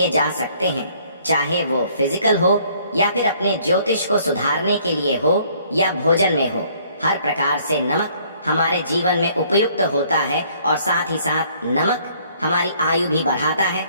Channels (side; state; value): both; inverted; correlation -0.61